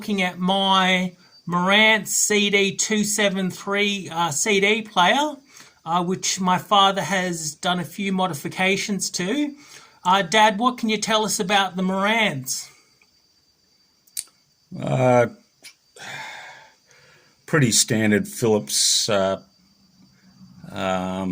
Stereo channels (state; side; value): identical; both; correlation 1.00